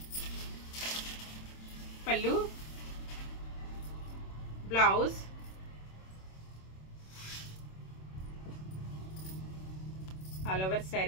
పళ్ళు, బ్లౌజ్, ఆల్ ఓవర్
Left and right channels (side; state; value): right; late; 26 ms